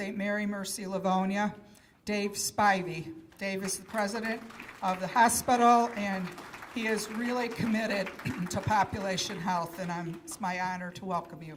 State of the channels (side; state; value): both; identical; correlation 1.00